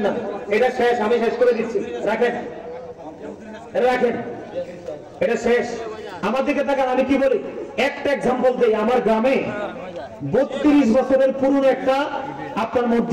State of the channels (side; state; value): both; identical; correlation 1.00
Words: না, এটা শেষ, আমি শেষ করে দিচ্ছি, রাখেন রাখেন, এটা শেষ। আমার দিকে তাকান, আমি কি বলি, একটা এক্সাম্পল দেই। আমার গ্রামে 32 বছরের পুরনো একটা আপনার